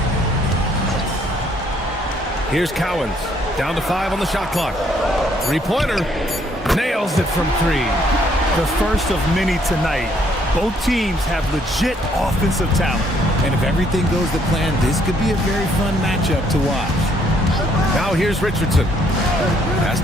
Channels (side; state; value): both; normal; correlation 0.67